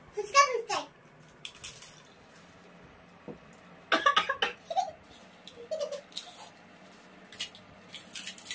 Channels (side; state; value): both; identical; correlation 1.00